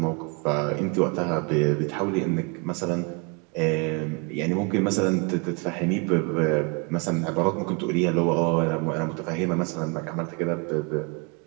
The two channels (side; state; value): left; quieter; 32.1 dB